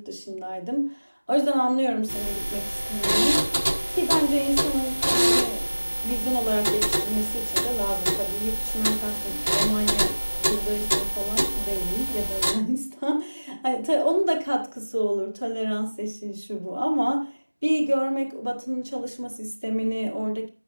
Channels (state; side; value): inverted; both; correlation -1.00